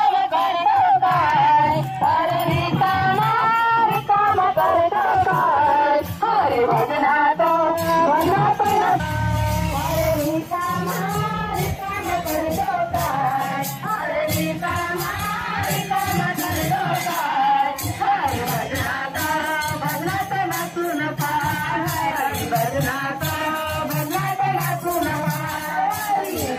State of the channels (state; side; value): identical; both; correlation 1.00